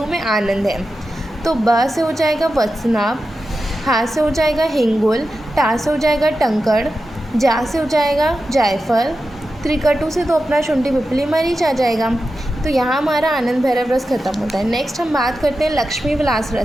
में आनंद है। तो ब से हो जाएगा वत्सनाभ, हा से हो जाएगा हिंगुल, टा से हो जाएगा टंकड़, जा से हो जाएगा जायफल, त्रिकटु से तो अपना शुंठी पिपली मरीच आ जाएगा। तो यहाँ हमारा आनंद भैरव रस खत्म होता है। नेक्स्ट हम बात करते हैं लक्ष्मी विलास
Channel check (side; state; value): both; normal; correlation 0.91